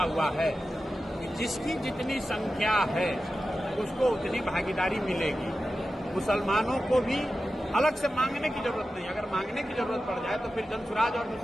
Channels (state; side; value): normal; both; correlation 0.93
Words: हुआ है कि जिसकी जितनी संख्या है उसको उतनी भागीदारी मिलेगी। मुसलमानों को भी अलग से मांगने की जरूरत नहीं। अगर मांगने की जरूरत पड़ जाए तो फिर जनसुराज और